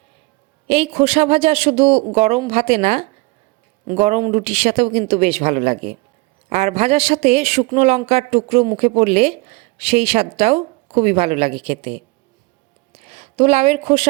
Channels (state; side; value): quieter; left; 25.3 dB